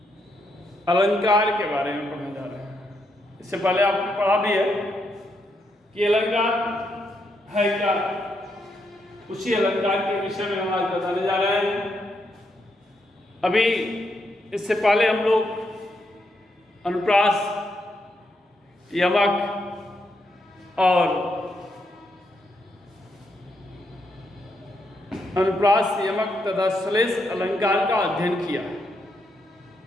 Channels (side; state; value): both; normal; correlation 0.79